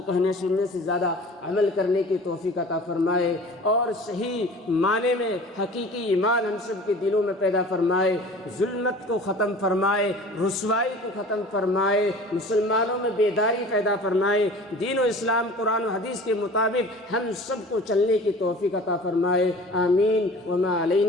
کہنے سننے سے زیادہ عمل کرنے کی توفیق عطا فرمائے اور صحیح معنی میں حقیقی ایمان ہم سب کے دلوں میں پیدا فرمائے، ظلمت کو ختم فرمائے، رسوائی کو ختم فرمائے، مسلمانوں میں بیداری پیدا فرمائے، دین و اسلام قرآن و حدیث کے مطابق ہم سب کو چلنے کی توفیق عطا فرمائے۔ آمین۔ وما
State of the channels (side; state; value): both; normal; correlation 0.42